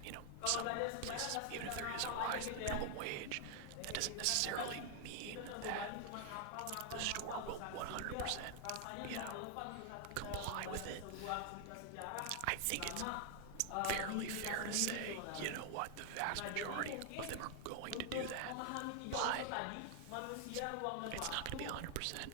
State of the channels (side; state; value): both; different; correlation 0.00